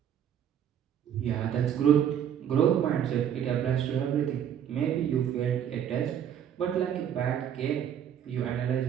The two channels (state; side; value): quieter; left; 9.4 dB